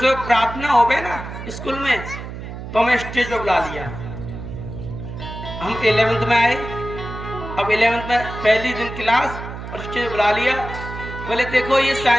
प्रार्थना हो गए ना स्कूल में, तो हमें स्टेज पर बुला लिया। हम 11th में आए। अब 11th में पहली दिन क्लास और स्टेज बुला लिया। बोले देखो ये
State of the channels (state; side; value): noise; right; hum, 10 dB below the sound